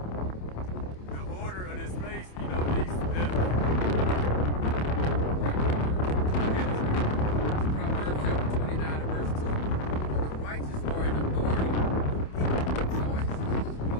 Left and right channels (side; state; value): right; late; 27 ms